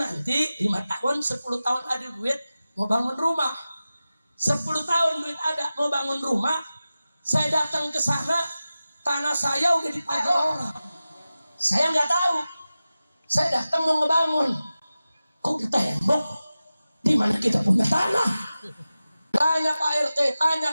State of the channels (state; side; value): inverted; both; correlation -0.95